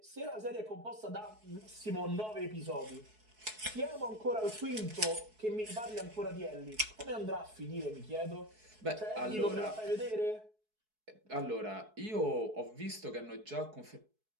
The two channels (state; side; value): late; left; 4.7 ms